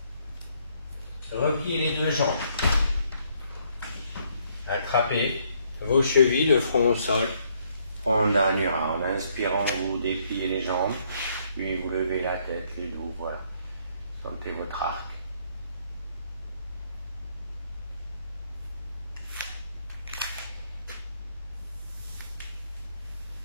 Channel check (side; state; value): both; inverted; correlation -0.69